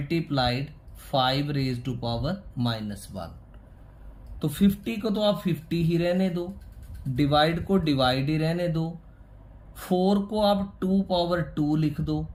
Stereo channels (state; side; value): identical; both; correlation 1.00